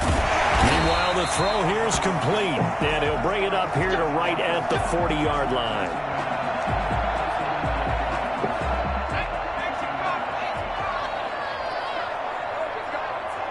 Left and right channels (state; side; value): identical; both; correlation 1.00